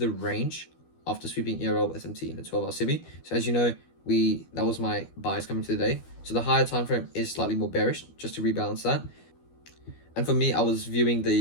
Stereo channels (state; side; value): late; right; 12 ms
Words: range after sweeping ERL SMT in the 12-hour CB. So as you know, that was my buys coming to the day. So the higher time frame is slightly more bearish, just to rebalance that. And for me, I was viewing